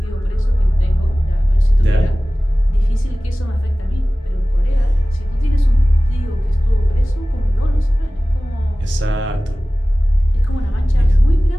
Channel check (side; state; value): both; normal; correlation 0.97